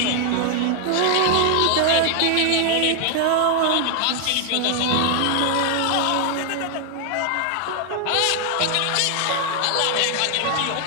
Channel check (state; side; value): different; both; correlation 0.00